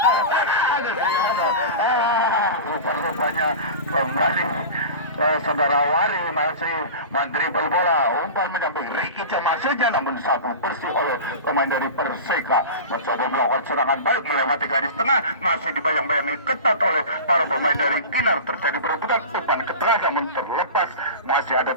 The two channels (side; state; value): both; inverted; correlation -0.31